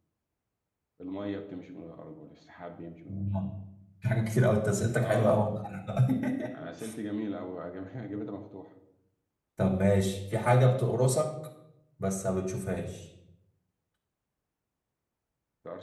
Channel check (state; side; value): identical; both; correlation 1.00